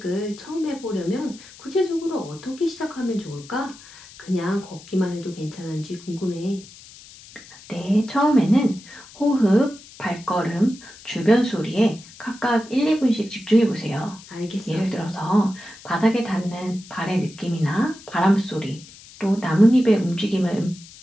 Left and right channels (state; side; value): noise; left; hiss, 20 dB below the sound